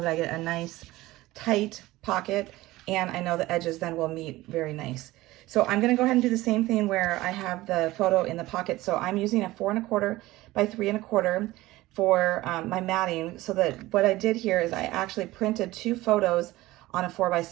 that I get a nice tight pocket, and I know the edges then will meet very nice. So I'm gonna go ahead and do the same thing where I have the photo in the pocket. So I'm using a 4 1/4 by 3 1/4 for my matting, so that what I did here is I actually printed 2 photos on a 4 by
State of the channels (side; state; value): left; quieter; 18.0 dB